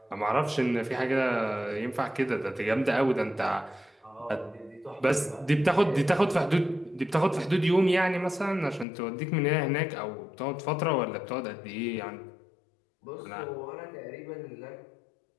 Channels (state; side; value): drops out; right; at 8.8 s